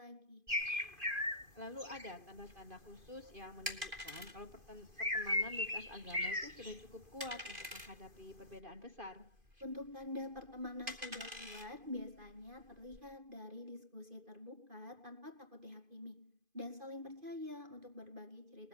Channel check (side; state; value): left; late; 2.5 ms